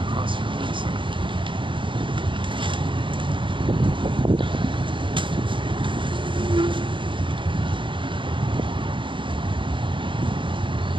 across here. Wait a second.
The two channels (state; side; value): late; left; 0.24 ms